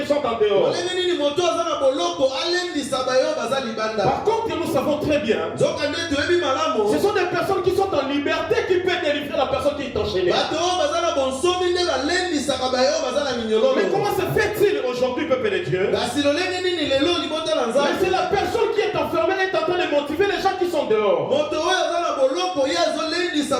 sont en dehors? Par contre, nous savons très bien, ce sont des personnes qui sont en liberté qui peuvent délivrer la personne qui est enchaînée. Mais comment se fait-il aujourd'hui, peuple de Dieu? Mais c'est la personne qui est enfermée est en train de motiver les gens qui sont dehors.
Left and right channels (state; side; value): identical; both; correlation 1.00